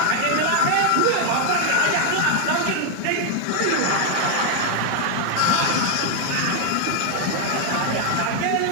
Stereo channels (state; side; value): different; both; correlation 0.01